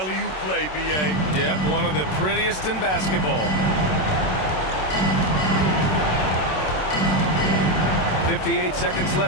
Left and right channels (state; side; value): late; right; 27 ms